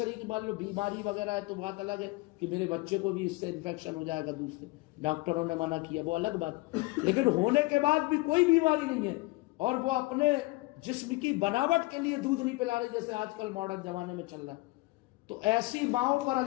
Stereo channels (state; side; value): quieter; right; 22.3 dB